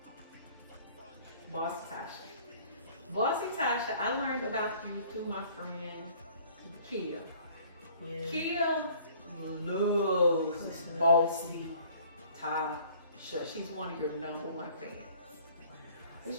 Bossy Tasha, I learned about you through my friend Kia. Yeah. Kia loves Bossy Tasha. She's one of your #1 fans. And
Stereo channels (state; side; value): inverted; both; correlation -0.54